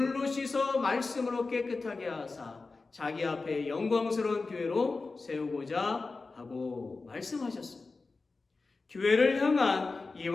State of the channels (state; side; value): quieter; right; 3.9 dB